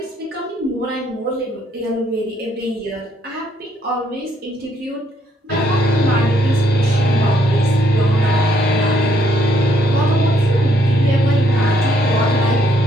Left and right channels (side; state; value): both; normal; correlation 0.70